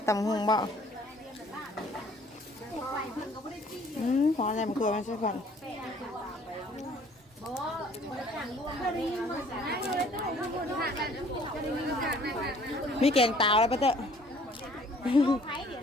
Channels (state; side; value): normal; both; correlation 0.56